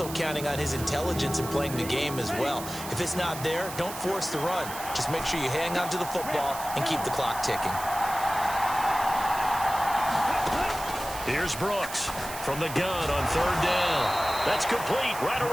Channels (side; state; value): right; noise; hiss, 10 dB below the sound